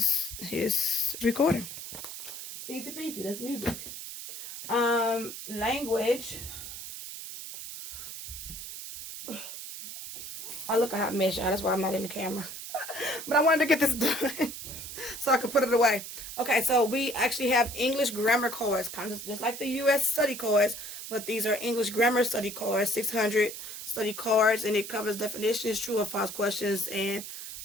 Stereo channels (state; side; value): noise; right; hiss, 10 dB below the sound